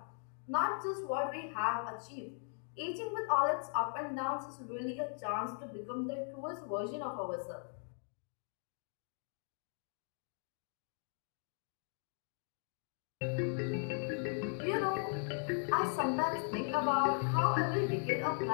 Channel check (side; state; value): right; silent; 52 dB below the other